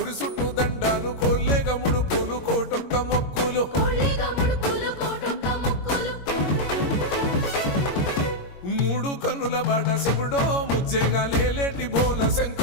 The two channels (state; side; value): late; right; 21 ms